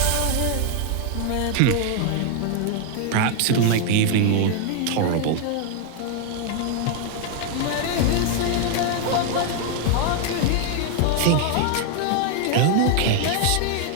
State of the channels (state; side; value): different; both; correlation 0.00